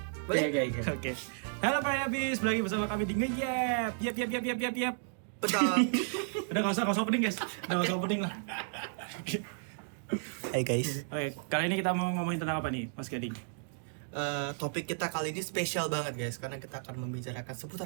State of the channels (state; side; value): silent; left; digital silence